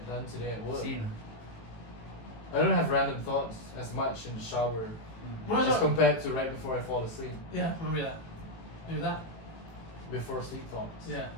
done today at work. Same. I don't have random thoughts as much in the shower What was as that? compared to right before I fall asleep. Yeah, maybe that. Maybe that. Before sleep thoughts. Yeah.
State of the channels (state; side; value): late; right; 18 ms